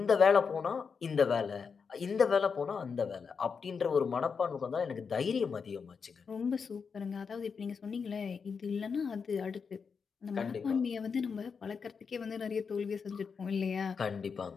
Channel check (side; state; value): right; quieter; 5.8 dB